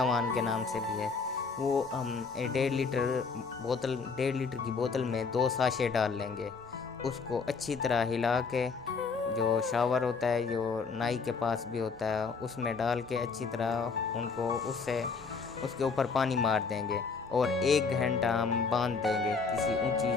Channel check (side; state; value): right; quieter; 4.9 dB